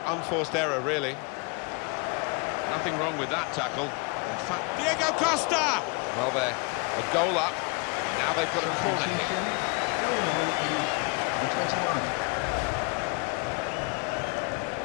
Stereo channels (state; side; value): quieter; right; 31.7 dB